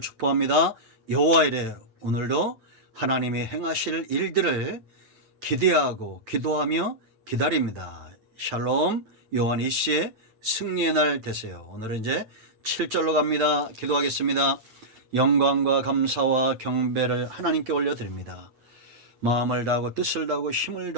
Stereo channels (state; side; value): late; left; 8.9 ms